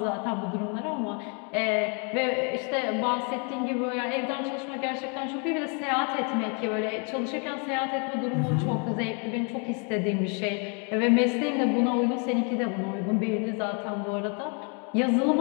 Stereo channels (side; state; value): right; quieter; 37.5 dB